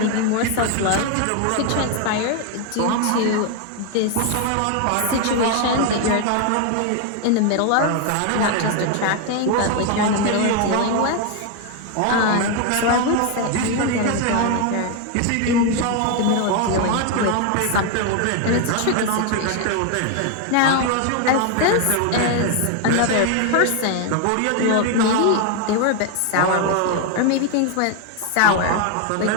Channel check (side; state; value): both; different; correlation 0.01